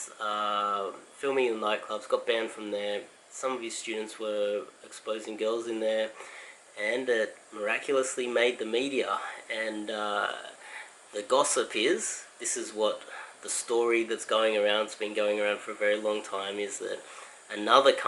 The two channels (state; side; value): identical; both; correlation 1.00